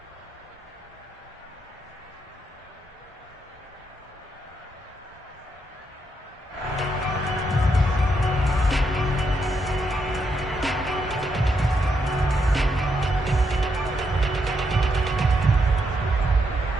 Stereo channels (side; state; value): both; normal; correlation 0.79